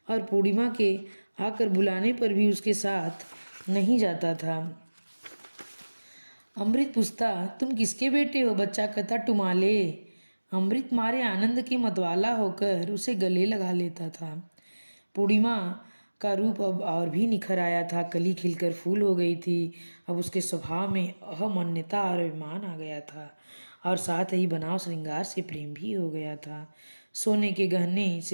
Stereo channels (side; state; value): both; inverted; correlation -1.00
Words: और पूर्णिमा के आकर बुलाने पर भी उसके साथ नहीं जाता था। अमृत पूछता, तुम किसके बेटे हो? बच्चा कहता, टुमाले। अमृत मारे आनंद के मतवाला होकर उसे गले लगा लेता था। पूर्णिमा का रूप अब और भी निखर आया था। कली खिलकर फूल हो गई थी। अब उसके स्वभाव में अहमन्यता और अभिमान आ गया था और साथ ही बनाव श्रृंगार से प्रेम भी हो गया था। सोने के गहने